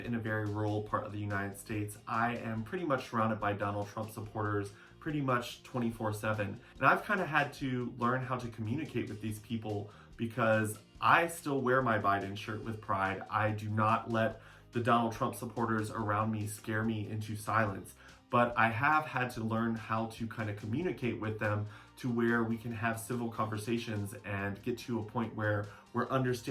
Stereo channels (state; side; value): identical; both; correlation 1.00